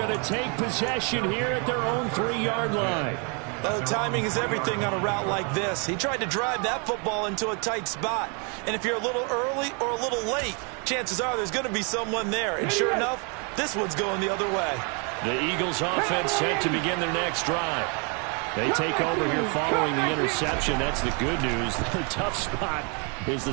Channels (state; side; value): quieter; left; 35.7 dB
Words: to take possession here at their own 3-yard line. Well, timing is everything on a route like this. He tried to drive that football into a tight spot. And if you're a little early or a little late, chances are there's going to be someone there. And sure enough, this one's going the other way. The Eagles offense set to begin their next drive. They take over here following the interception. That's the good news. The tough spot is the